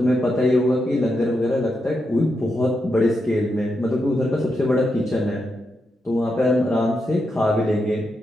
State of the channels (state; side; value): normal; both; correlation 0.85